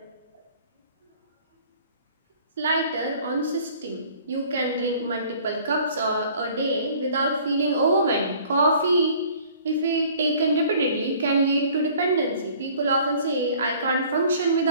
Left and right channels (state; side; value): inverted; both; correlation -0.52